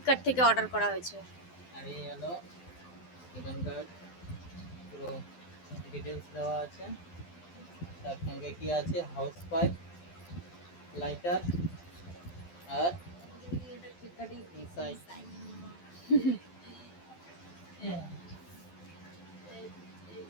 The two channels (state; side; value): late; right; 12 ms